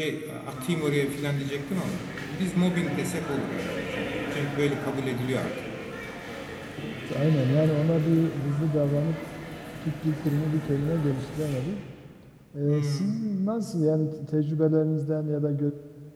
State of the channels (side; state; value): both; identical; correlation 1.00